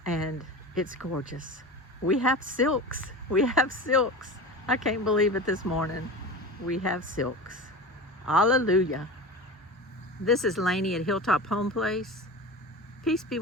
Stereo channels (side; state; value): both; normal; correlation 0.30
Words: And it's gorgeous. We have silks. We have silks. I can't believe it this morning. We have silks. Hallelujah. This is Lainey at Hilltop Home Place. Peace be